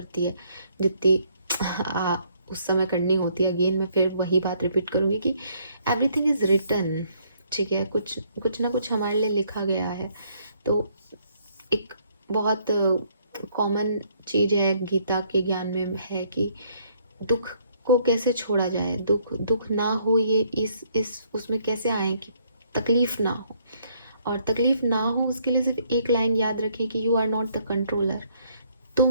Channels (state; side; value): inverted; both; correlation -0.67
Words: है जितनी उस समय करनी होती है। अगेन मैं फिर वही बात रिपीट करूँगी कि एवरीथिंग इज़ रिटन, ठीक है, कुछ कुछ ना कुछ हमारे लिए लिखा गया है। तो एक बहुत कॉमन चीज़ है गीता के ज्ञान में है कि दुख को कैसे छोड़ा जाए, दुख दुख ना हो, ये इस उसमें कैसे आए कि तकलीफ ना हो। और तकलीफ ना हो उसके लिए सिर्फ एक लाइन याद रखें कि you are not the controller,